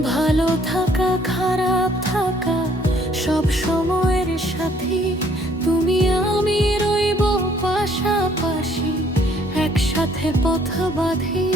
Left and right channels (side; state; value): both; normal; correlation 0.63